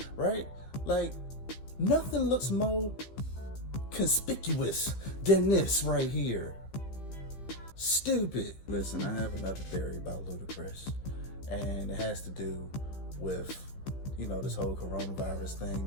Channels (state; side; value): late; right; 15 ms